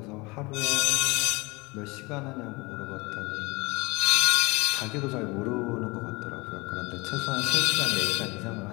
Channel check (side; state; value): right; quieter; 25.0 dB